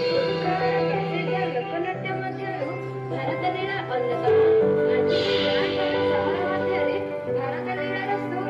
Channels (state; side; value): identical; both; correlation 1.00